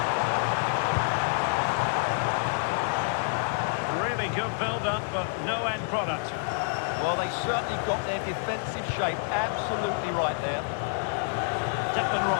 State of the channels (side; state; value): right; silent; digital silence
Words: Good build-up, but no end product. Well, they certainly got their defensive shape absolutely right there. Declan